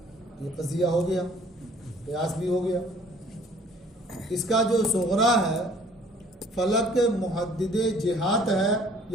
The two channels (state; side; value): normal; both; correlation 0.55